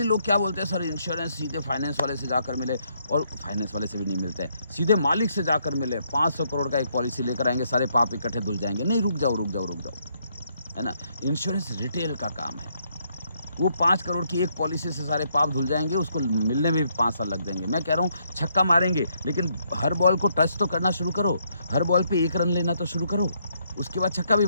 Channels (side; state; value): both; inverted; correlation -0.74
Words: लोग क्या बोलते हैं, सर इंश्योरेंस सीधे फाइनेंस वाले से जाकर मिले, और फाइनेंस वाले से भी नहीं मिलते हैं। सीधे मालिक से जाकर मिले, 500 करोड़ का एक पॉलिसी लेकर आएँगे, सारे पाप इकट्ठे धुल जाएँगे। नहीं, रुक जाओ, रुक जाओ, रुक जाओ, है ना? इंश्योरेंस रिटेल का काम है। वो 5 करोड़ की एक पॉलिसी से सारे पाप धुल जाएँगे, उसको मिलने में भी 5 साल लग जाएँगे। मैं कह रहा हूँ छक्का मारेंगे, लेकिन हर बॉल को टच तो करना शुरू करो। हर बॉल पे 1 रन लेना तो शुरू करो। उसके बाद छक्का भी